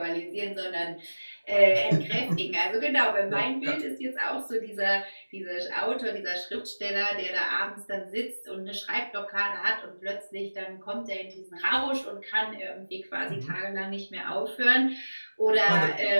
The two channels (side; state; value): both; inverted; correlation -1.00